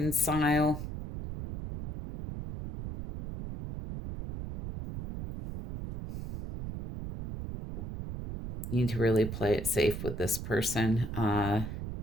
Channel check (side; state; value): right; noise; rumble, 7 dB below the sound